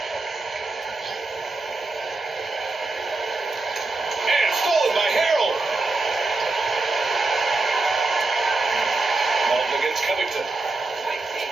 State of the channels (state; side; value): quieter; left; 3.3 dB